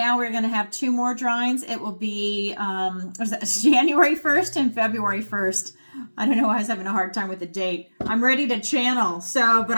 we're going to have two more drawings. It will be January 1st and February 1st. I don't know why I was having a hard time with the date. I'm ready to channel, but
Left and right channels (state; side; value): inverted; both; correlation -1.00